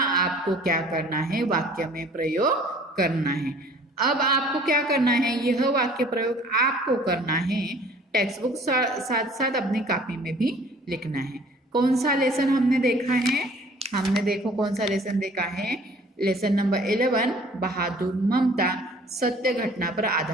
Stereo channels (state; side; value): normal; both; correlation 0.52